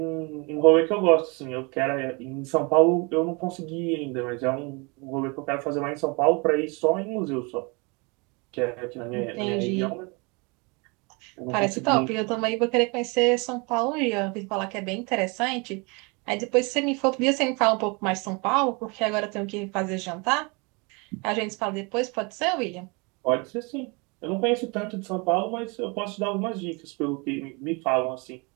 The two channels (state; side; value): quieter; left; 29.8 dB